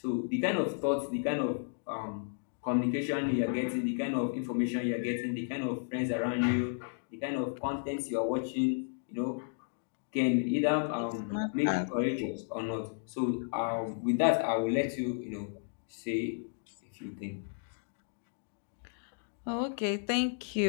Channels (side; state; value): right; silent; digital silence